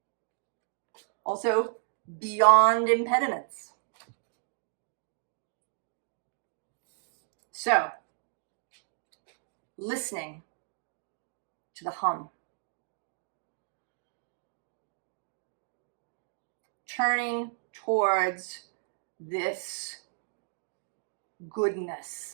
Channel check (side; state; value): left; silent; digital silence